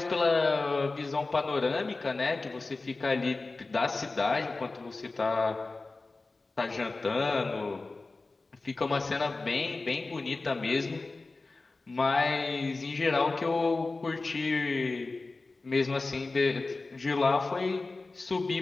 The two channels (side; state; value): right; quieter; 3.5 dB